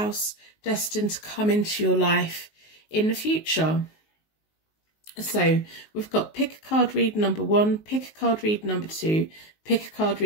destined to come into your life in the future. So we've got pick a card read number 1, pick a card read number 2, pick a card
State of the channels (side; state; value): right; late; 19 ms